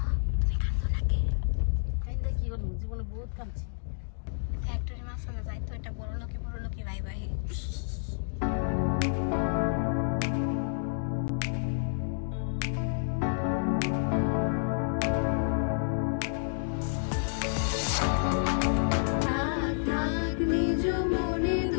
তুমি কান্দো নাকি? কাইন্দা কি করব? জীবনে বহুত কাঁদছি। ফ্যাক্টরি মাসলে যাই তো, এটা বড় লোকি ভাই ভাই।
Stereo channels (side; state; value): right; silent; digital silence